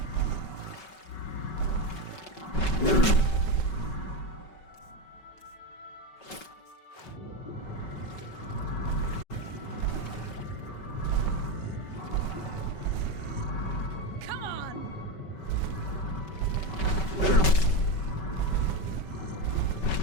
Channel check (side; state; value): right; late; 5.3 ms